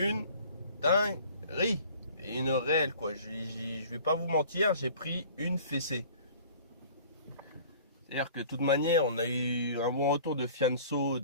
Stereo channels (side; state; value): both; inverted; correlation -0.48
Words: dinguerie. Et une réelle quoi. Je vais pas vous mentir, j'ai pris une fessée. C'est-à-dire que de toute manière, on a eu un bon retour de Fianso